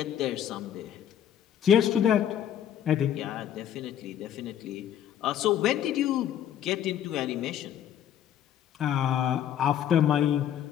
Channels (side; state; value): right; quieter; 10.1 dB